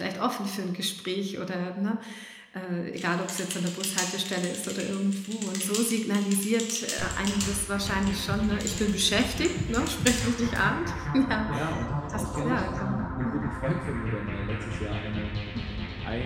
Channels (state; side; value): identical; both; correlation 1.00